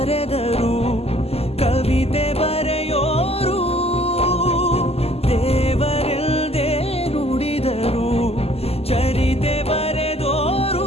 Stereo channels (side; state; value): right; late; 0.29 ms